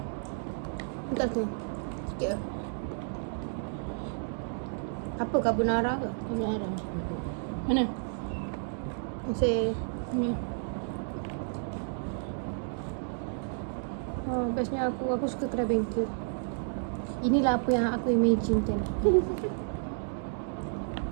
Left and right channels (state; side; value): silent; left; digital silence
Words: Entah tu. Sikit weh. Apa carbonara ke? Ambil arah. Mana? Masih Ni. bestnya aku suka kedai bengkel. Inilah apa yang aku imagine kan.